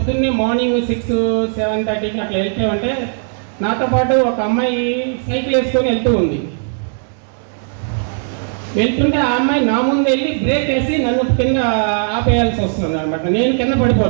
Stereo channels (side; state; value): left; silent; digital silence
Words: మార్నింగ్ 6, 7:30కి అట్లా వెళ్తే ఉంటే నాతో పాటు ఒక అమ్మాయి సైకిల్ వేసుకొని వెళ్తూ ఉంది. వెళ్తుంటే ఆ అమ్మాయి నా ముందు వెళ్ళి బ్రేక్ వేసి నన్ను కింద ఆపేయాల్సి వస్తుంది అనమాట. నేను కింద